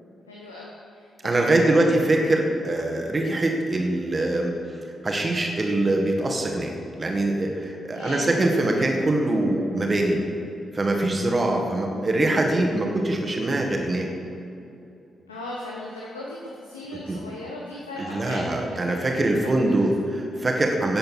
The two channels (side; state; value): both; normal; correlation 0.89